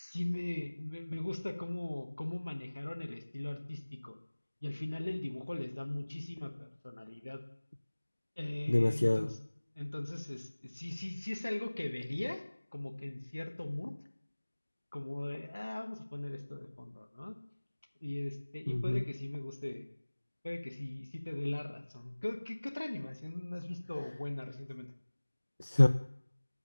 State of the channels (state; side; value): inverted; both; correlation -1.00